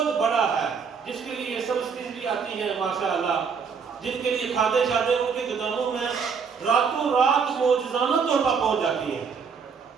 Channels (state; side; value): quieter; left; 6.0 dB